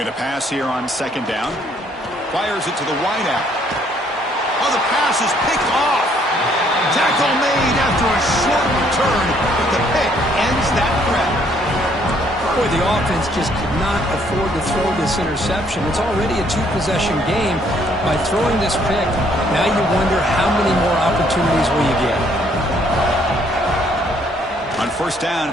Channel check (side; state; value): both; normal; correlation 0.66